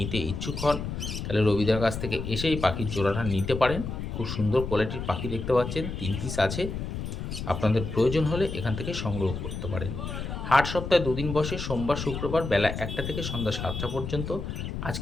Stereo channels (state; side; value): noise; left; rumble, 5 dB below the sound